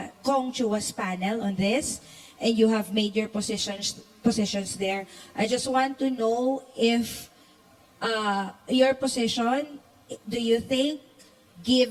panel on this, and you have made your positions there. I just want to know if your position, do you think,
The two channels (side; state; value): both; identical; correlation 1.00